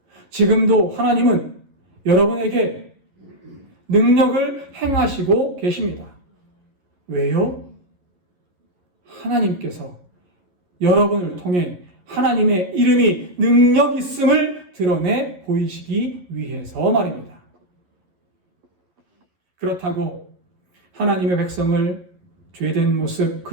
지금도 하나님은 여러분에게 능력을 행하시고 계십니다. 왜요? 하나님께서 여러분을 통해 하나님의 이름이 능력 있음을 드러내 보이시기 위해서 말입니다. 그렇다고 하나님의 백성을 죄된 모습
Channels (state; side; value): late; left; 11 ms